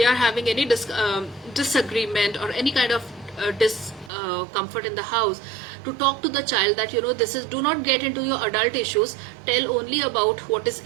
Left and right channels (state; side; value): drops out; left; at 4.1 s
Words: are having any disagreement or any kind of discomfort in the house, to talk to the child that do not get into your adult issues. Tell only about what is